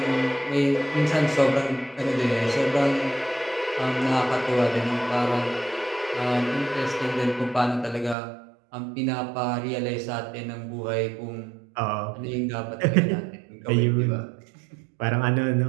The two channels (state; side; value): drops out; left; at 8.2 s